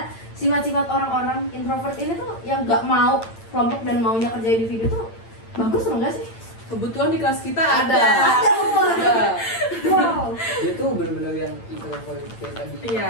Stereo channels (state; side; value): late; right; 8.9 ms